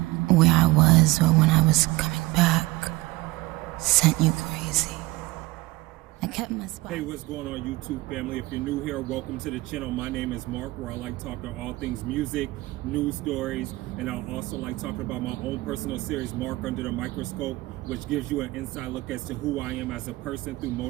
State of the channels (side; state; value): left; quieter; 20.4 dB